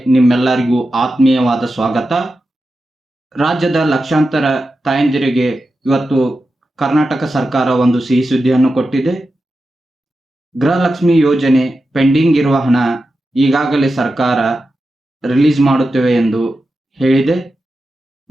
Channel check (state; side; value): normal; both; correlation 0.91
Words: ನಿಮ್ಮೆಲ್ಲರಿಗೂ ಆತ್ಮೀಯವಾದ ಸ್ವಾಗತ. ರಾಜ್ಯದ ಲಕ್ಷಾಂತರ ತಾಯಂದಿರಿಗೆ ಇವತ್ತು ಕರ್ನಾಟಕ ಸರ್ಕಾರ ಒಂದು ಸಿಹಿ ಸುದ್ದಿಯನ್ನು ಕೊಟ್ಟಿದೆ. ಗೃಹಲಕ್ಷ್ಮಿ ಯೋಜನೆ ಪೆಂಡಿಂಗ್ ಇರುವ ಹಣ ಈಗಾಗಲೇ ಸರ್ಕಾರ ರಿಲೀಸ್ ಮಾಡುತ್ತೇವೆ ಎಂದು ಹೇಳಿದೆ.